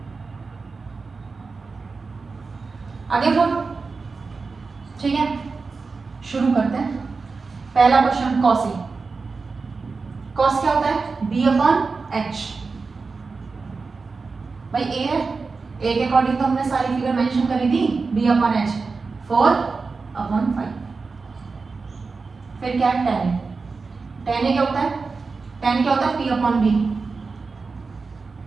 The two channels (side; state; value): left; quieter; 4.4 dB